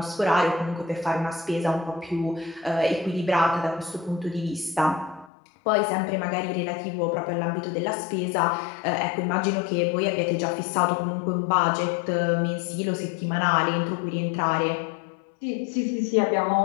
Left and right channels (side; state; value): right; drops out; at 5.3 s